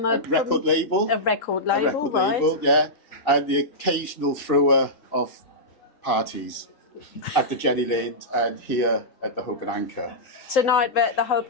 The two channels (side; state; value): right; late; 3.7 ms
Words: record label. A record A label, record right? label, yeah. And the occasional thrower of parties at the Jenny Lind and here at the Hope and Anchor. Tonight we're at the Hope